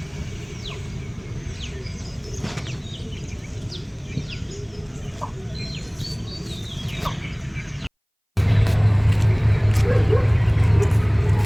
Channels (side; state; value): both; identical; correlation 1.00